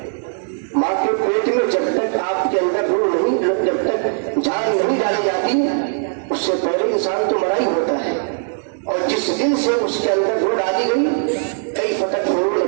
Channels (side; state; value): left; silent; digital silence